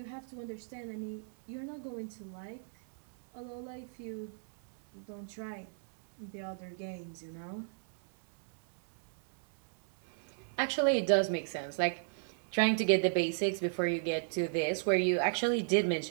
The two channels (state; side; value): silent; left; 55 dB below the other